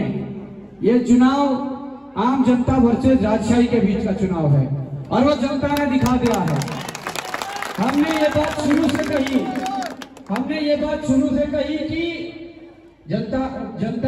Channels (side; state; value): both; identical; correlation 1.00